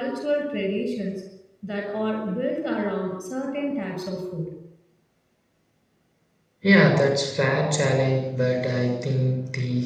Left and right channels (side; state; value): both; identical; correlation 1.00